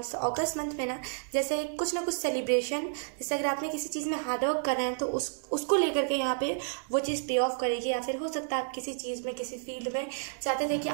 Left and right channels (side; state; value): left; silent; digital silence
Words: तो अगस्त मंथ में ना जैसे कुछ ना कुछ सेलिब्रेशन, जैसे अगर आपने किसी चीज़ में हार्डवर्क कर रहे हैं तो उसको लेकर के यहाँ पे वो चीज़ पे ऑफ करेगी, या फिर हो सकता है आप किसी चीज़ में किसी फील्ड में चाहते थे कि